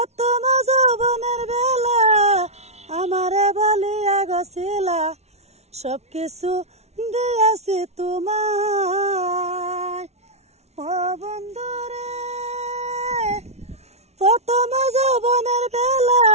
যৌবনের বেলা আমারে বলিয়া গছিলা সব কিছু দিয়াছি তোমায় ও বন্ধু রে প্রথম যৌবনের বেলা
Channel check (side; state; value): left; late; 0.31 ms